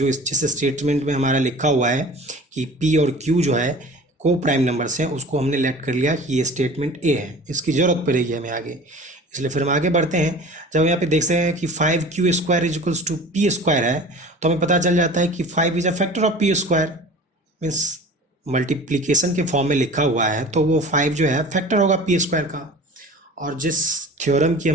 जिस स्टेटमेंट में हमारा लिखा हुआ है कि पी और क्यू जो है को प्राइम नंबर्स हैं, उसको हमने लेट कर लिया कि ये स्टेटमेंट ए है, इसकी ज़रूरत पड़ेगी हमें आगे, इसलिए फिर हम आगे बढ़ते हैं। जब हम यहाँ पे देखते हैं कि 5q square is equals to P square है, तो हमें पता चल जाता है कि 5 is a factor of P square. Means multiplication के फॉर्म में लिखा हुआ है तो वो 5 जो है फैक्टर होगा पी स्क्वायर का। और जिस थ्योरम की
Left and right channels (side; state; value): both; normal; correlation 0.41